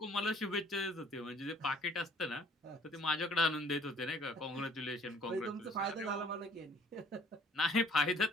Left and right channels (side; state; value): both; normal; correlation 0.57